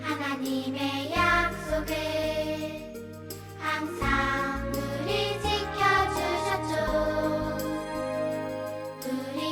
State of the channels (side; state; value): both; identical; correlation 1.00